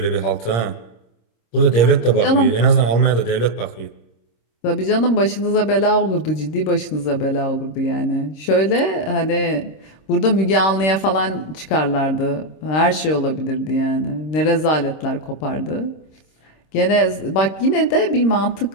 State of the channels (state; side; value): late; right; 26 ms